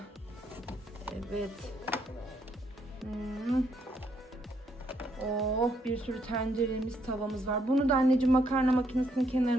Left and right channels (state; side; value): normal; both; correlation 0.73